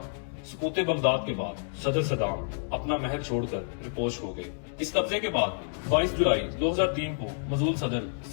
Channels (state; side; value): silent; right; digital silence